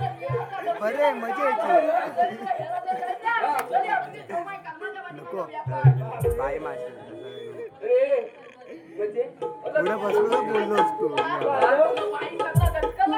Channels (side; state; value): both; identical; correlation 1.00